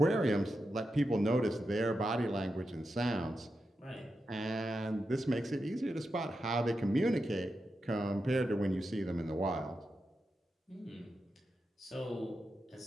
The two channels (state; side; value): normal; both; correlation 0.88